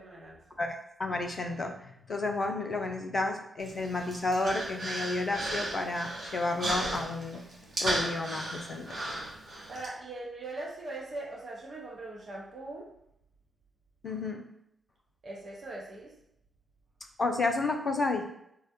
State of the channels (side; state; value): both; normal; correlation 0.79